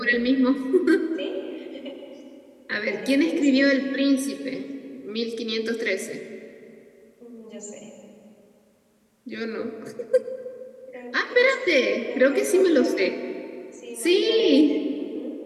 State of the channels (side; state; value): both; identical; correlation 1.00